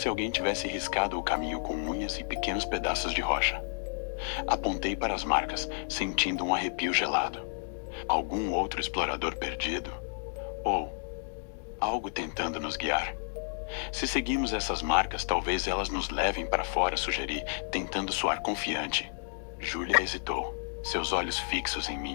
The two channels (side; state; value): right; silent; digital silence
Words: alguém tivesse riscado o caminho com unhas e pequenos pedaços de rocha. Apontei para as marcas, sentindo um arrepio gelado. Algum outro explorador perdido? Ou algo tentando nos guiar? Se seguimos essas marcas, talvez elas nos levem para fora, sugeri, tentando soar confiante. Júlia hesitou, seus olhos fixos em